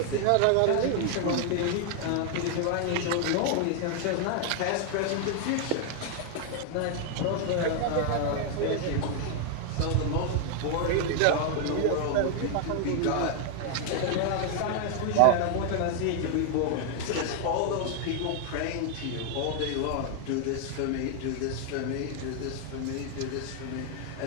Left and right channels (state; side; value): different; both; correlation 0.00